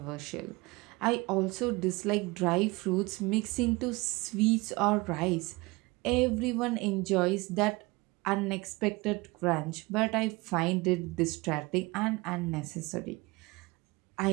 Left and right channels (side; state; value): left; quieter; 23.6 dB